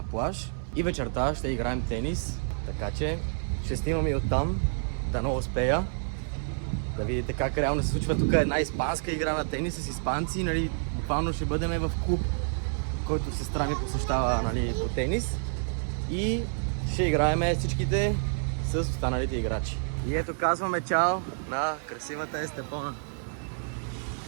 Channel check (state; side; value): silent; left; 56 dB below the other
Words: плаж. И вечерта ще играем тенис, така че ще снимам и оттам, да не успея. Да видите как реално се случва тук една испанска игра на тенис с испанци. Буквално ще бъдем в клуб, който сестра ми посещава по тенис. И ще играем всичките с останалите играчи. И ето казваме чао на красивата Естепона.